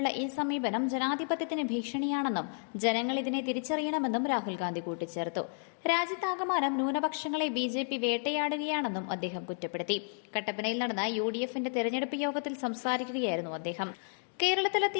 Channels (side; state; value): right; silent; digital silence